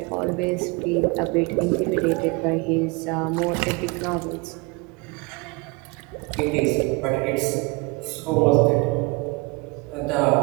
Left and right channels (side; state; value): left; quieter; 27.5 dB